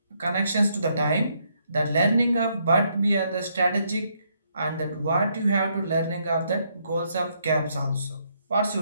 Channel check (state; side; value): inverted; both; correlation -0.74